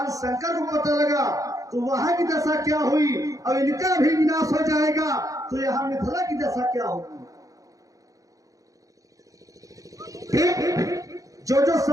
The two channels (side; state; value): left; late; 0.17 ms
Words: शंकर को पता लगा तो वहां की दशा क्या हुई और इनका भी विनाश हो जाएगा तो यहाँ मिथिला की दशा क्या होगी? जो जो